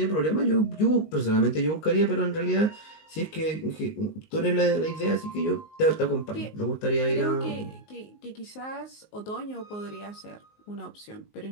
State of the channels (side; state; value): right; late; 19 ms